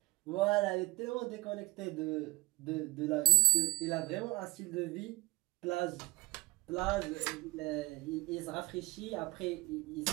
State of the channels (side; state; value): left; quieter; 19.6 dB